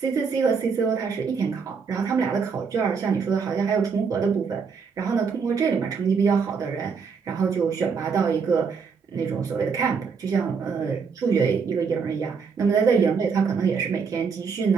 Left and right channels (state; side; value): quieter; left; 5.6 dB